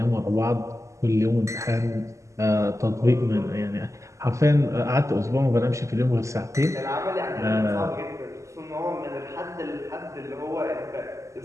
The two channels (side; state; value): left; late; 0.15 ms